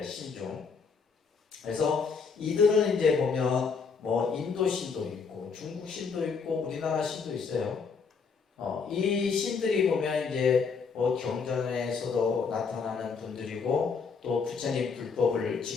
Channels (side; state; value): right; quieter; 5.4 dB